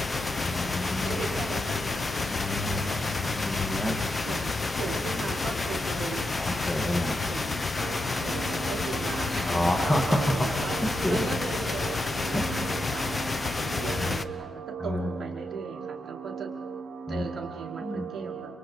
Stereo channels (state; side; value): normal; both; correlation 0.86